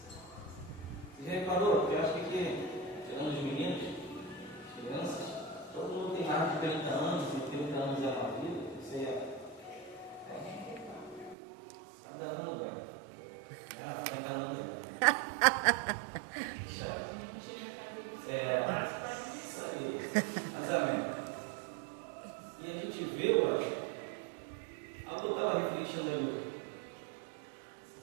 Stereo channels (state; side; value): drops out; left; at 11.4 s